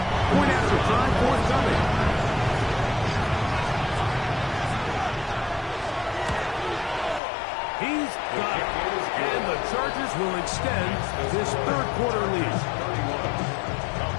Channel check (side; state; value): right; drops out; at 7.2 s